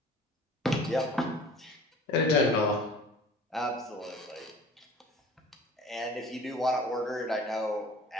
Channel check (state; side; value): normal; both; correlation 0.45